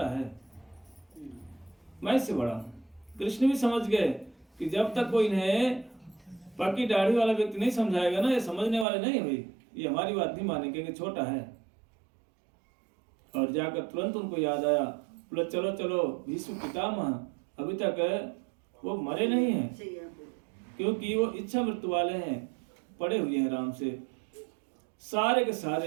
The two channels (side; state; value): left; drops out; at 8.8 s